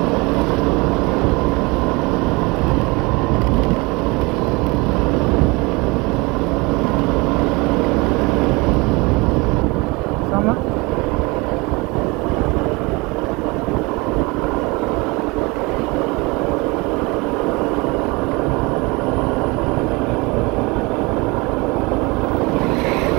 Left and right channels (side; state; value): left; quieter; 25.6 dB